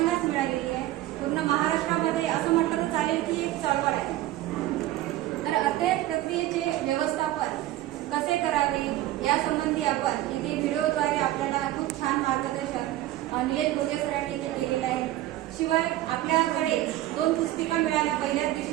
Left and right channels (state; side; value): quieter; left; 15.1 dB